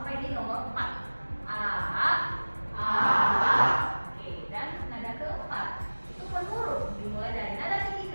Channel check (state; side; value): inverted; both; correlation -1.00